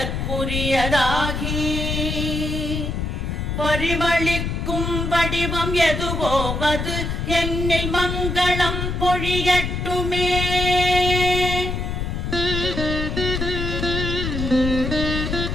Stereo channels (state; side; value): noise; left; rumble, 2 dB below the sound